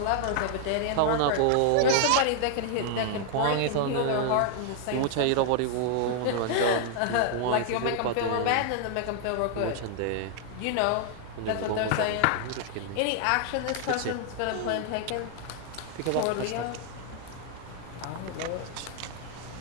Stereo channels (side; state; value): both; different; correlation 0.00